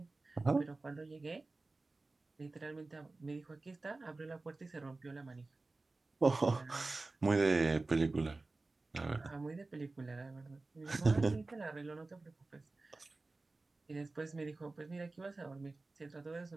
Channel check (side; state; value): left; quieter; 3.4 dB